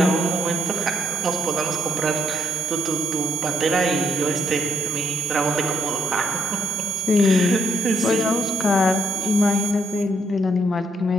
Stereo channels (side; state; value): both; normal; correlation 0.74